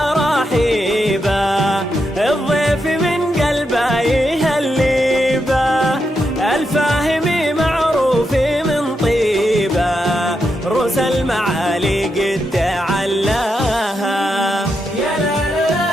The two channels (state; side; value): normal; both; correlation 0.84